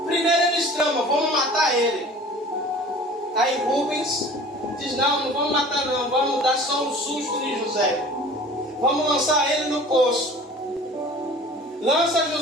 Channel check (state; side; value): normal; both; correlation 0.43